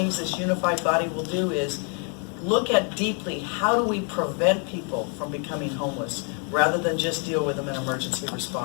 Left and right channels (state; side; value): quieter; right; 39.7 dB